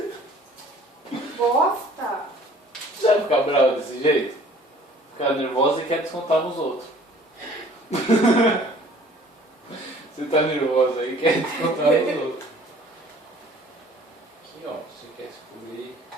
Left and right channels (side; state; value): both; normal; correlation 0.52